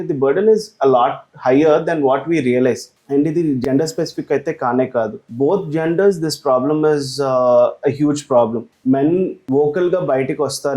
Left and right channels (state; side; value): identical; both; correlation 1.00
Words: the burden is a lot higher than what we realize. And ఇది gender specific అయితే కానే కాదు, both genders this problem is a huge problem. Men vocal గా బయటికి